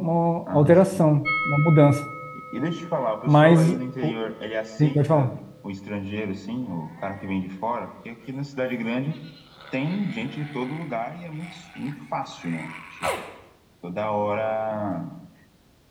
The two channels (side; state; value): both; identical; correlation 1.00